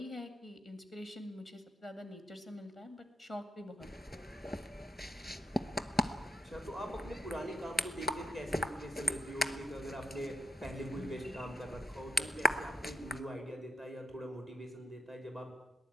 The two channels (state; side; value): normal; both; correlation 0.81